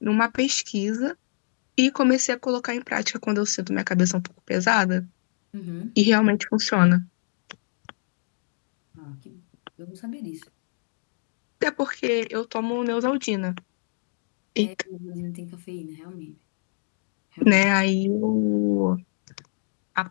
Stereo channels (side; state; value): right; silent; digital silence